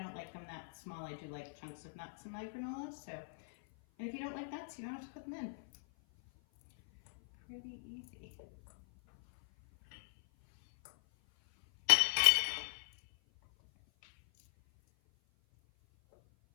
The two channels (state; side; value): silent; right; 52 dB below the other